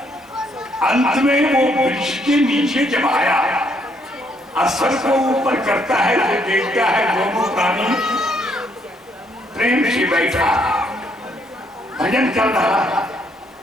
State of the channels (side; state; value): both; normal; correlation 0.71